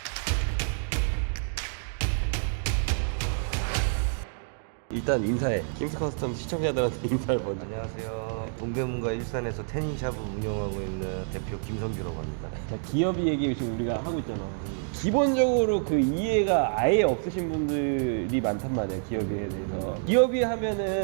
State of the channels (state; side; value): silent; left; digital silence